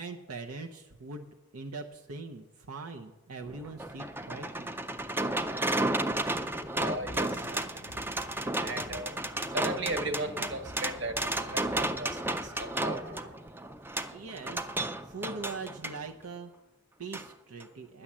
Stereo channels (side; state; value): both; normal; correlation 0.29